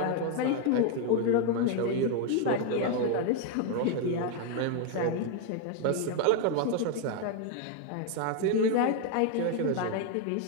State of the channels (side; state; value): both; different; correlation 0.01